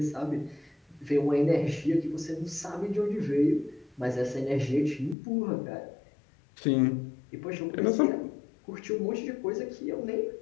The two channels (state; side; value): drops out; right; at 5.2 s